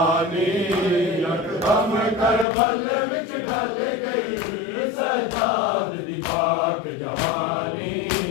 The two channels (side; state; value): right; drops out; at 2.5 s